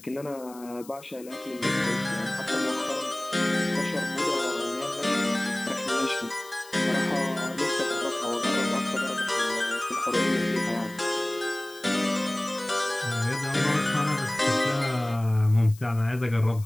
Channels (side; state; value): left; noise; hiss, 21 dB below the sound